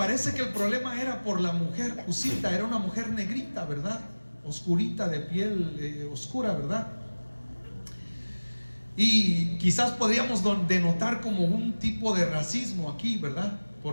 que el problema era por la mujer Cusita. Era una mujer negrita, ¿verdad? Oscurita, de piel oscura, ¿verdad? Y quizás podríamos denotar como un tipo de racismo aquí, ¿verdad?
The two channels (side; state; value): both; inverted; correlation -1.00